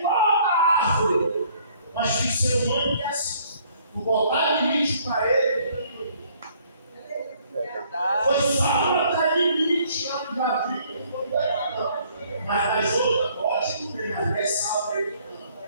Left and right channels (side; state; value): both; inverted; correlation -0.62